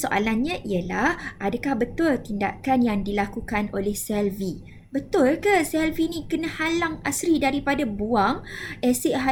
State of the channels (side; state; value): both; identical; correlation 1.00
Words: ialah adakah betul tindakan yang dilakukan oleh Selvi? Betul ke Selvi ni kena halang Asri daripada buang asid